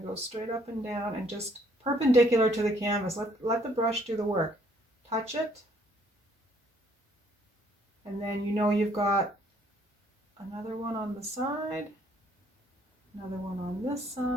to go straight up and down and just perpendicular to the canvas. Let the brush do the work. Touch it, and then you know you've got another one on the side, another one on this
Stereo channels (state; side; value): normal; both; correlation 0.64